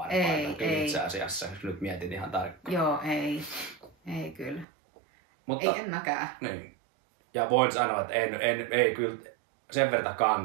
Ei. Itse asiassa, jos nyt mietin ihan tarkkaan. Joo, ei. Ei kyllä. Mutta, ei, en mäkään. Niin. Ja voin sanoa, että ei kyllä sen verran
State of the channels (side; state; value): left; drops out; at 4.7 s